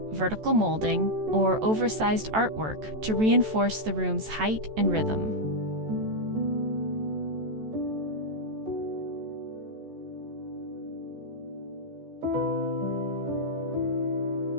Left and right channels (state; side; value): late; left; 14 ms